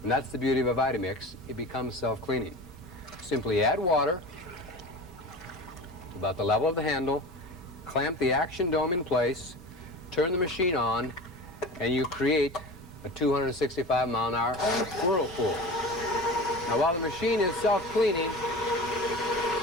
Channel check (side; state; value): both; normal; correlation 0.33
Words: And that's the beauty of a VitaMix. It becomes self-cleaning. Simply add water about the level of the handle, clamp the action dome in place, turn the machine on, and you create a 265-mile-an-hour whirlpool. Now, while the machine is self-cleaning,